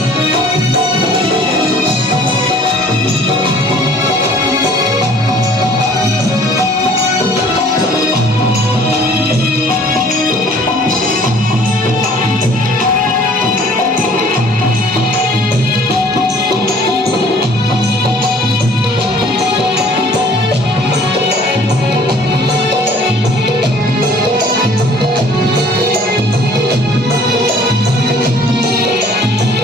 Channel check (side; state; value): both; normal; correlation 0.54